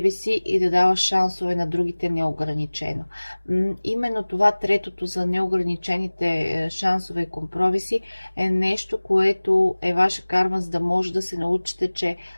си и да даваш шансове на другите неограничено. Именно това, третото за неограничените шансове и компромиси, е нещо, което е ваша карма, за да може да се научите, че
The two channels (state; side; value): inverted; both; correlation -1.00